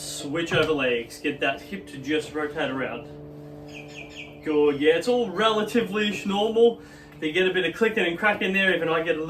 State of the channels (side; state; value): both; identical; correlation 1.00